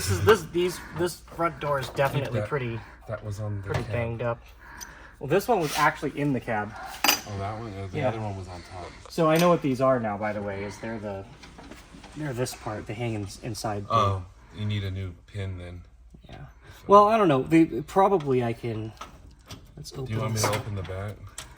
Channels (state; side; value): identical; both; correlation 1.00